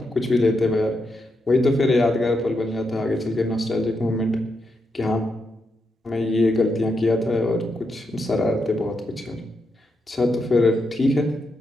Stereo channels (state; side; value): normal; both; correlation 0.83